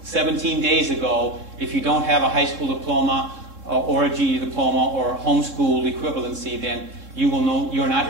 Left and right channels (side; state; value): left; late; 3.7 ms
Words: 17 days ago, if you don't have a high school diploma or a GED diploma or homeschool equivalency, then you will know you're not